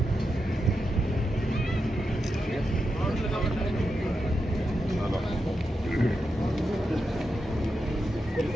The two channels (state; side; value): normal; both; correlation 0.87